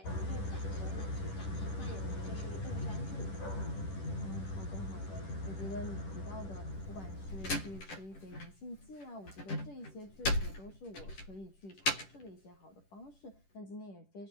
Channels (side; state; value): right; late; 10 ms